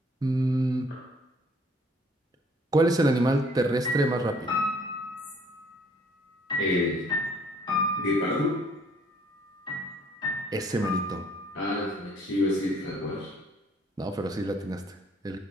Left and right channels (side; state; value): both; normal; correlation 0.59